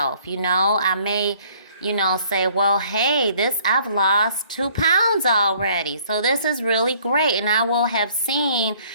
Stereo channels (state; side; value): inverted; both; correlation -0.58